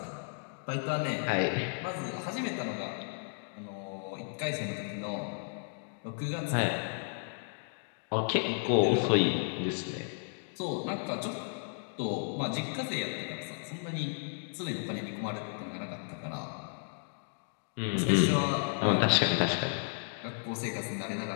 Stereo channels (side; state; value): right; silent; digital silence